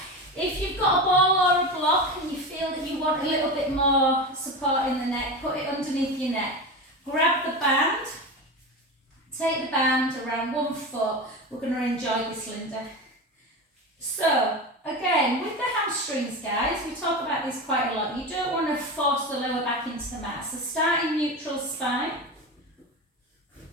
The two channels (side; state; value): both; normal; correlation 0.24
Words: If you've got a ball or a block and you feel that you want a little bit more support in the neck, put it underneath your neck. Grab the band, take the band around 1 foot. We're going to enjoy this, Linda. So, again, with the hamstrings, guys, we talk about this quite a lot. You don't want to force the lower back into the mat. So start in neutral spine.